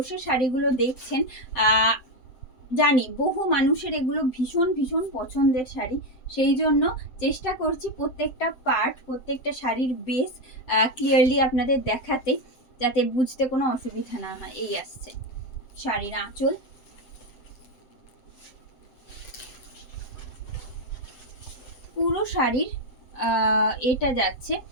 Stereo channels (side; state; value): right; late; 7.9 ms